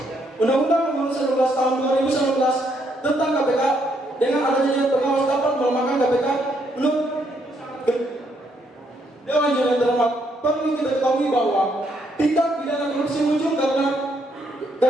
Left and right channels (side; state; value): both; normal; correlation 0.73